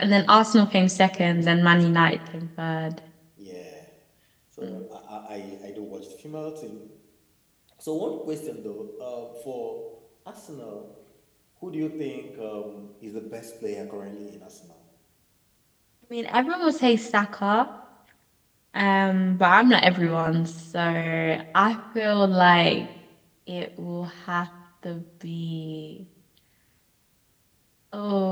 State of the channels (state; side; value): identical; both; correlation 1.00